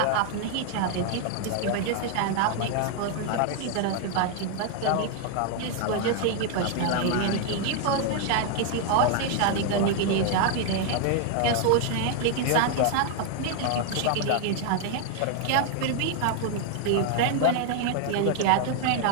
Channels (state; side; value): different; both; correlation 0.00